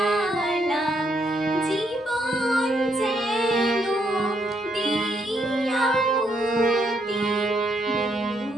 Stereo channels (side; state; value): both; normal; correlation 0.75